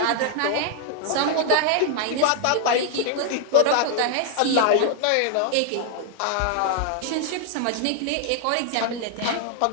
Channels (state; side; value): different; both; correlation 0.00